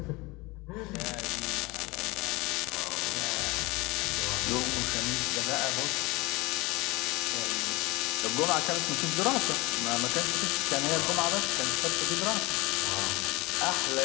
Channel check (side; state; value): right; quieter; 23.7 dB